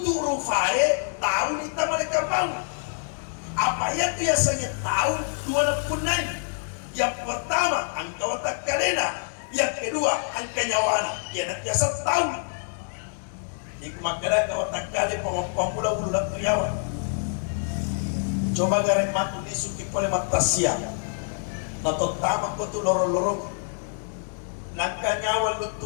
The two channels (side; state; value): right; silent; digital silence